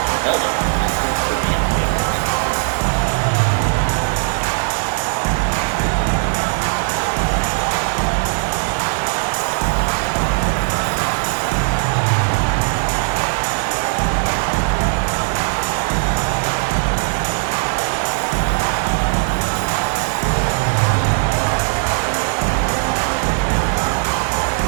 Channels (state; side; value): silent; left; digital silence